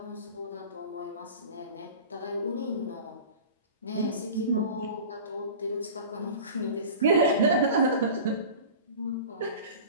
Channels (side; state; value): both; inverted; correlation -0.37